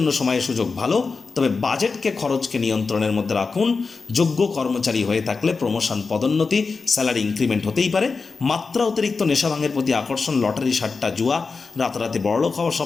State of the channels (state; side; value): quieter; right; 4.5 dB